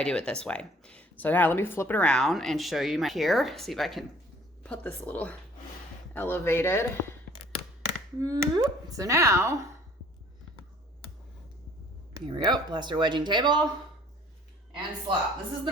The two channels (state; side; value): normal; both; correlation 0.55